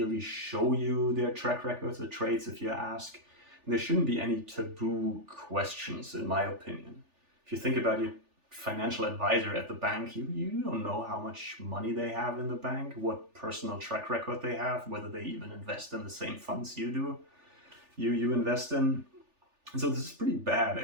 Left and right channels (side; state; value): left; late; 3.4 ms